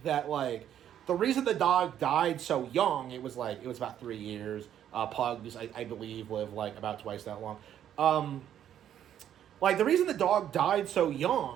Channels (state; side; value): quieter; left; 10.3 dB